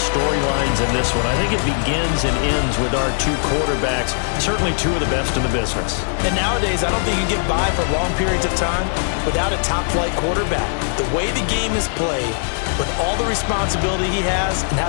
in this one. I think it begins and ends with our two quarterbacks, certainly two of the best in the business. And nowadays, I don't think you can get by for long periods of time without a top-flight quarterback. The way the game is played, with all the responsibility he has and how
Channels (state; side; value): silent; right; digital silence